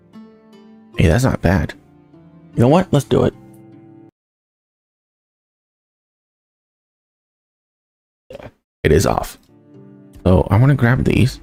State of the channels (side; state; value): both; identical; correlation 1.00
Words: Hey, that's not bad. You know what? Let's do it. Yeah, it is off. So I want to grab these.